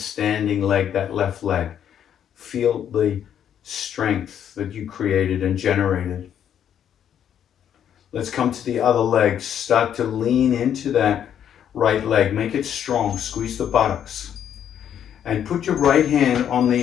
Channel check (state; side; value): quieter; right; 9.4 dB